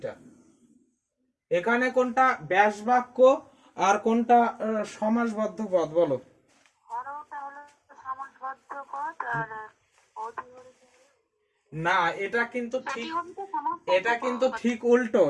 এখানে কোনটা ব্যাস বাক্য আর কোনটা সমাসবদ্ধ পদ, বলো? হরওটা হলো সমাসবদ্ধ পদ আর অধিহরিটা না, এটা কিন্তু ঠিক, অধিহরিটা সমাসবদ্ধ এটা কিন্তু পদ। ঠিক উল্টো,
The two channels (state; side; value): identical; both; correlation 1.00